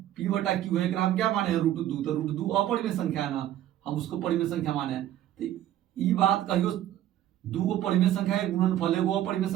P बटा Q है। हम क्या माने हैं? √2। तो √2 अपरिमेय संख्या है ना, हम उसको परिमेय संख्या माने हैं। तो ई बात कहियो 2 को परिमेय संख्या है, गुणनफल एगो अपरिमेय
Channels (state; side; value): quieter; left; 12.5 dB